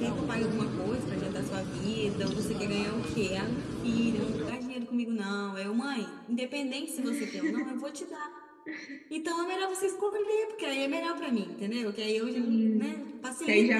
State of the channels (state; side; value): identical; both; correlation 1.00